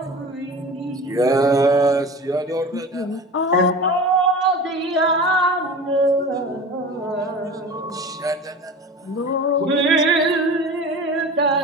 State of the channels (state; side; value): normal; both; correlation 0.34